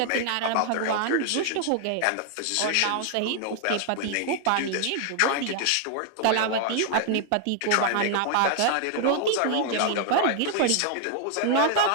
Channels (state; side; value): different; both; correlation 0.00